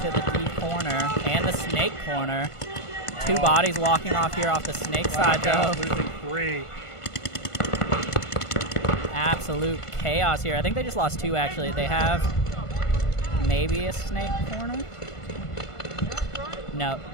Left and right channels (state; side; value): late; right; 1.5 ms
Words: the D corner and the snake corner. 2 bodies walking off here off the snake side, though. Losing 3. Absolute chaos here. I think they just lost 2, actually. They have maybe a snake corner? No.